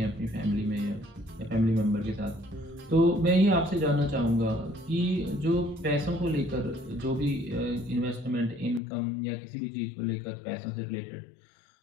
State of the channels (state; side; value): drops out; right; at 8.8 s